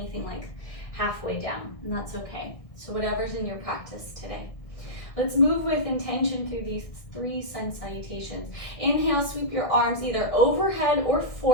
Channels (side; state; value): right; late; 1.6 ms